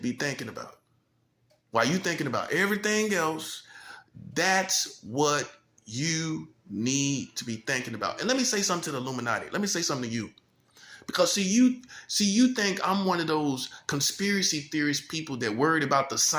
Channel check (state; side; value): identical; both; correlation 1.00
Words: thinking about. While you're thinking about everything else, that's what you need to be thinking about. And let me say something to the Illuminati. Let me say something to you. Because you think I'm one of those conspiracy theorist people that worried about the